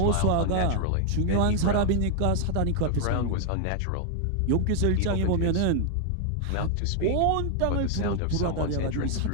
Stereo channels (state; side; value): different; both; correlation 0.00